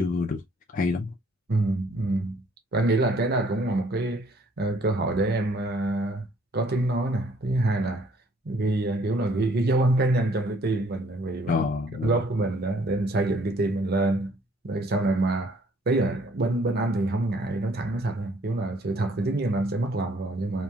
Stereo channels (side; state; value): both; normal; correlation 0.62